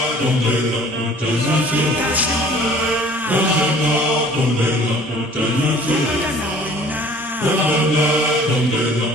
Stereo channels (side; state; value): both; normal; correlation 0.51